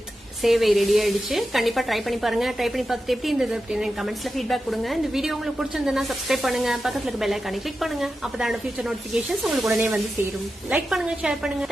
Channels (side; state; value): both; normal; correlation 0.91